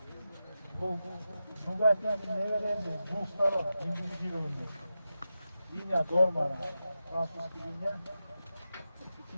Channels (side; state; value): both; inverted; correlation -0.91